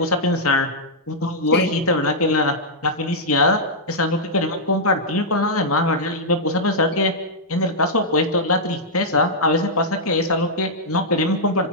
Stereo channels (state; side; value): normal; both; correlation -0.08